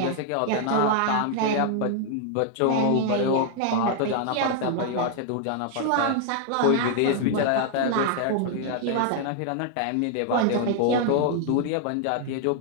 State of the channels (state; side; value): different; both; correlation 0.00